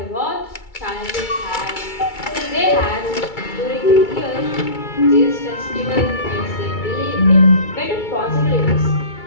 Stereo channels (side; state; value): right; late; 2.3 ms